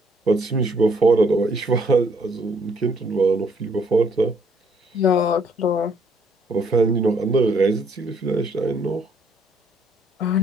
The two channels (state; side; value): normal; both; correlation 0.65